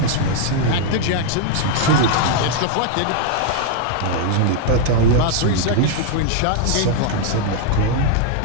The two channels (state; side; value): different; both; correlation 0.00